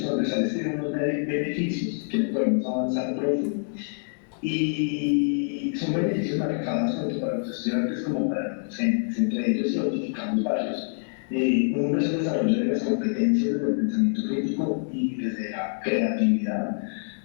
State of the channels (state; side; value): silent; right; digital silence